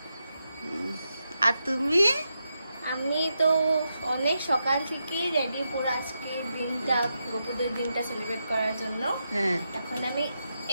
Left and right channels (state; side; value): inverted; both; correlation -0.86